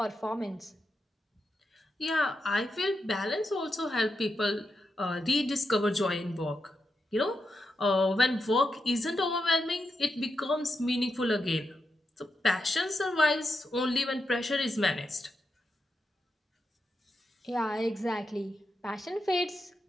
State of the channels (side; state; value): both; normal; correlation 0.86